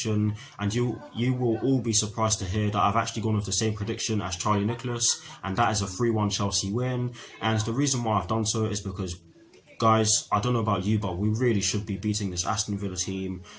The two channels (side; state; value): both; identical; correlation 1.00